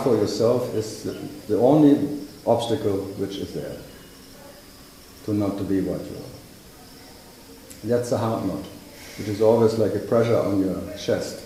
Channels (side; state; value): both; identical; correlation 1.00